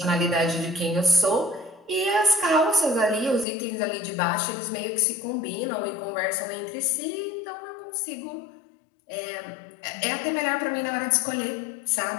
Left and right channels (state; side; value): drops out; right; at 3.5 s